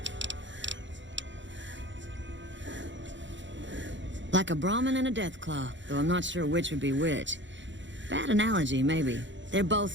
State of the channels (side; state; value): left; late; 0.54 ms